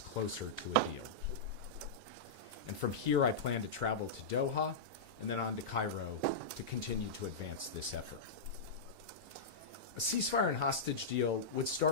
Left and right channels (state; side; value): quieter; right; 3.3 dB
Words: closer to a deal. And from here, I plan to travel to Doha and then on to Cairo to continue to advance this effort. A ceasefire and hostage deal would